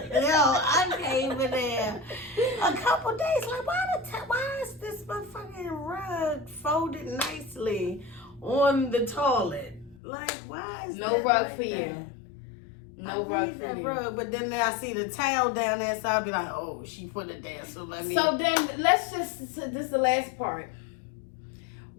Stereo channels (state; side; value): drops out; right; at 10.0 s